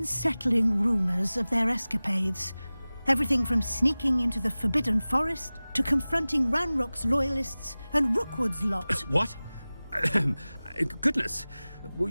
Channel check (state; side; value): inverted; both; correlation -0.98